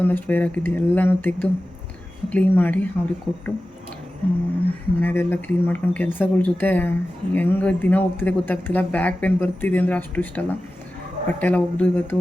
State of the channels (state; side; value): normal; both; correlation 0.94